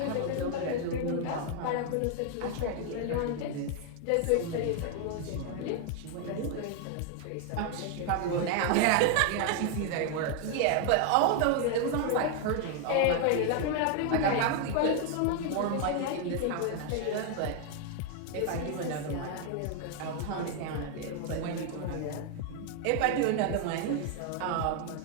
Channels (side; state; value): both; different; correlation 0.00